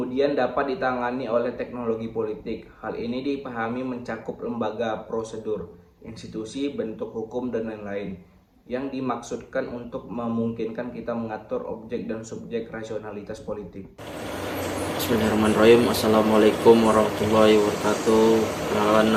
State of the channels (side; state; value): both; identical; correlation 1.00